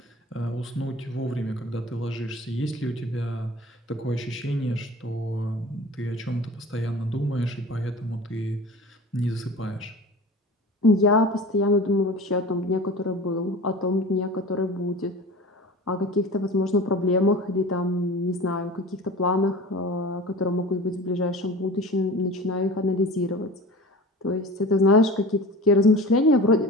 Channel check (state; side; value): normal; both; correlation 0.37